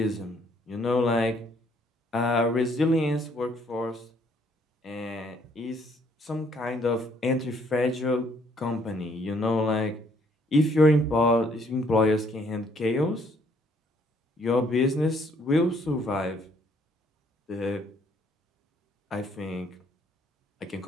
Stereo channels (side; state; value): both; normal; correlation 0.66